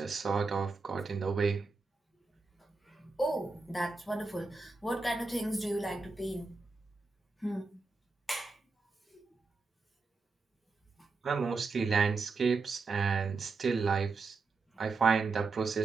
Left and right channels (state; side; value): quieter; left; 4.1 dB